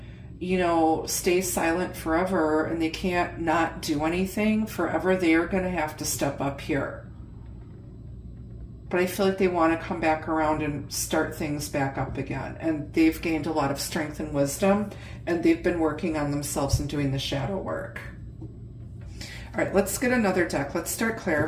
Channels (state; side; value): identical; both; correlation 1.00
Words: stay silent forever, and they can't not do anything forever. They are going to have to step up here. But I feel like they want to come back around and start things back up again. And they've gained a lot of strength and wisdom, and they've been working on themselves and doing the shadow work. All right, let's get another deck. Let's start